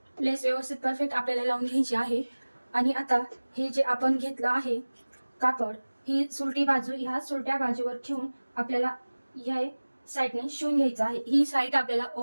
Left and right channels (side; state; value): both; inverted; correlation -1.00